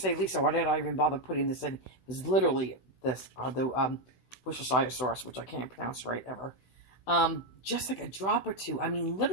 Lisa, why did I even bother putting this in? It was literally this, the Worcestershire sauce, which I can't pronounce right ever. Just like a drop or two. I mean,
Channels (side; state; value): right; late; 16 ms